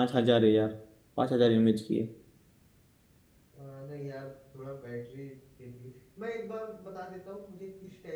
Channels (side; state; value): both; identical; correlation 1.00